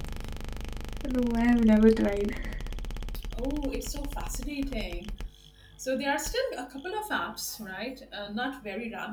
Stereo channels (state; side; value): identical; both; correlation 1.00